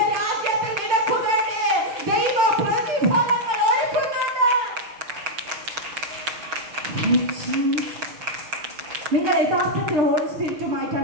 നിനക്ക് വേണ്ടി ദൈവ പ്രതിഫലങ്ങൾ ഒരുക്കുന്നുണ്ട്. നിങ്ങൾ യഥാർത്ഥത്തിൽ ഹോളി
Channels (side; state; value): left; late; 6.6 ms